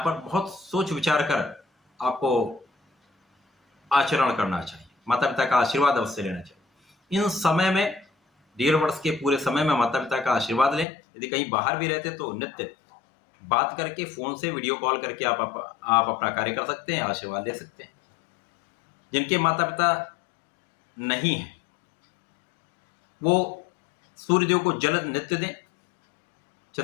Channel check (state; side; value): drops out; right; at 10.9 s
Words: पर बहुत सोच विचार कर आपको आचरण करना चाहिए। माता पिता का आशीर्वाद अवश्य लेना चाहिए। इन समय में 1.5 वर्ष के पूरे समय में माता पिता का आशीर्वाद लें। यदि कहीं बाहर भी रहते तो नित्य बात करके, फोन से वीडियो कॉल करके आप अपना कार्य कर सकते हैं, आशीर्वाद ले सकते हैं। जिनके माता पिता नहीं है वो सूर्यदेव को जल नित्य दें।